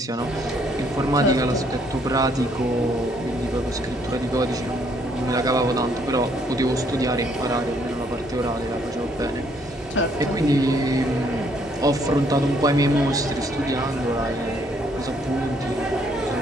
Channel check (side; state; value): both; normal; correlation 0.67